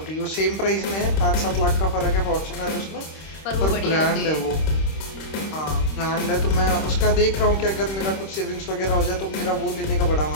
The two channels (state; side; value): late; right; 26 ms